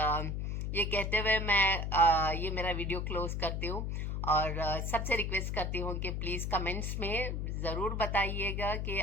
ये कहते हुए मैं ये मेरा वीडियो क्लोज करती हूँ और सबसे रिक्वेस्ट करती हूँ कि प्लीज़ कमेंट्स में ज़रूर बताइएगा कि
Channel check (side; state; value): left; noise; hum, 2 dB below the sound